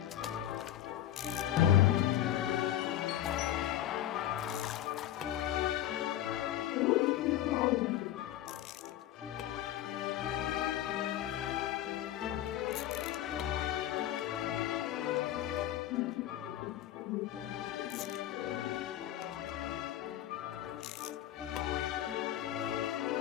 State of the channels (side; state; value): right; quieter; 12.3 dB